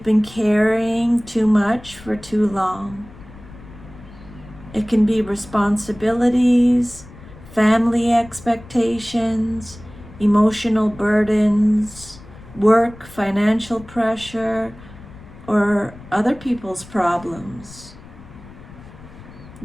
been carrying too much for too long. It can be responsibilities, family expectations, emotional burdens, work, financial pressure, or other people's problems.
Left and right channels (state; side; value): noise; left; rumble, 19 dB below the sound